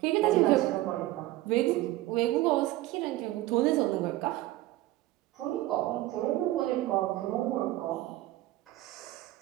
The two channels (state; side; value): quieter; left; 16.8 dB